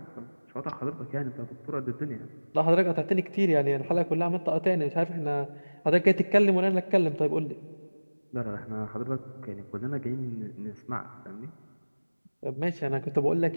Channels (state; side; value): inverted; both; correlation -1.00